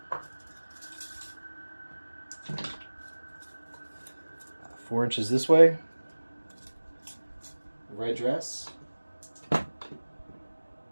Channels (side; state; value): both; inverted; correlation -1.00